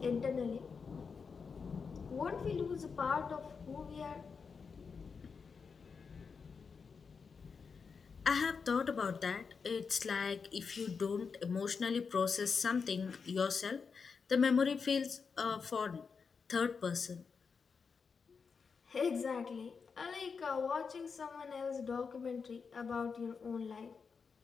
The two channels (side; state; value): right; quieter; 5.5 dB